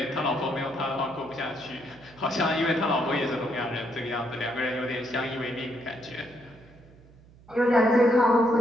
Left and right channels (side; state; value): right; noise; hum, 25 dB below the sound